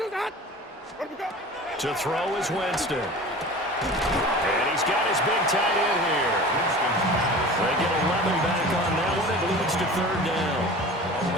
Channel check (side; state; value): both; normal; correlation 0.38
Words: we got? To throw is Winston. And he's got his big tight end here. They get 11 back on that one. It leads to 3rd down.